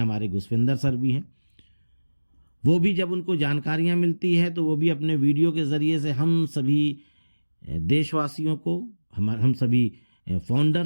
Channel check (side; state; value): both; inverted; correlation -1.00